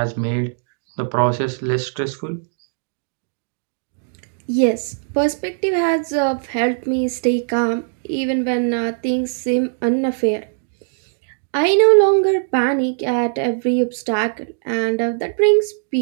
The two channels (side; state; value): left; silent; digital silence